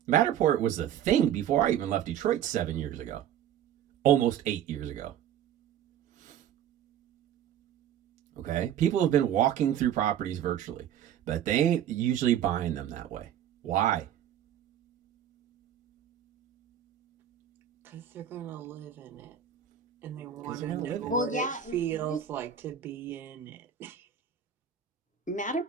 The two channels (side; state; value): left; quieter; 9.9 dB